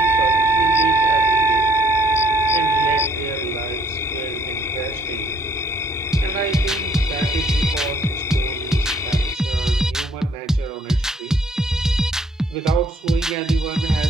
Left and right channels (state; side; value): normal; both; correlation 0.63